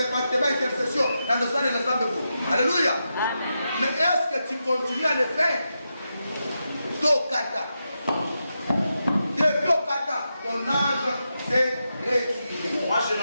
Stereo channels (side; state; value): both; inverted; correlation -0.87